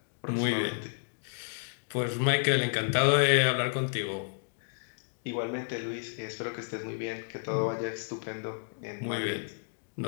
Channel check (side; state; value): right; silent; digital silence